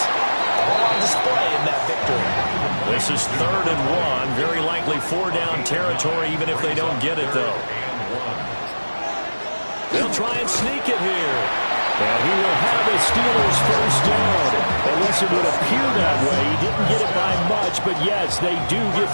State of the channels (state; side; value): inverted; both; correlation -1.00